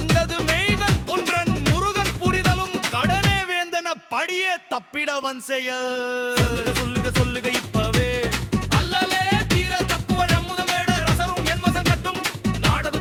மெய்கன் ஒன்றன் முருகன் புரிதலும் கடனே வேந்தன படியே தப்பிடவன் செய்ய சொல்லுக இப்பவே அல்லலே தீர தப்புவ நம்முதமேட ரசரும் என்மசம் கட்டும் நாடது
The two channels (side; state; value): both; identical; correlation 1.00